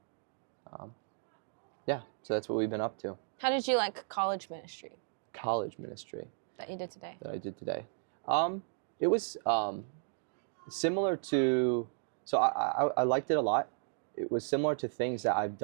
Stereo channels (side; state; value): left; silent; digital silence